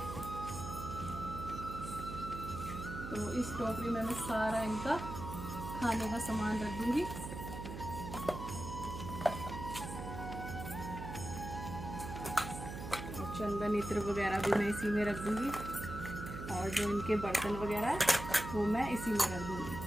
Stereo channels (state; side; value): noise; right; hum, 8 dB below the sound